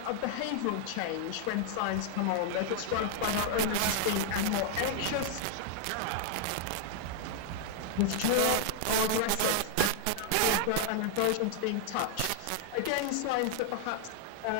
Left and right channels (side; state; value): both; different; correlation -0.01